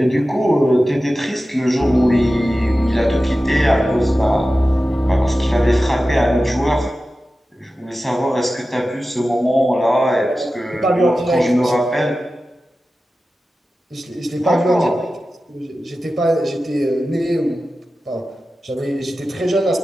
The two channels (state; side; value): normal; both; correlation 0.94